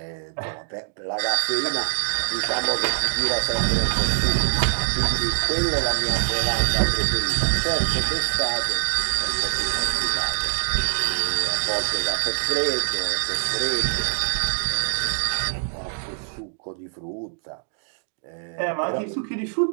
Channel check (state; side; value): silent; left; digital silence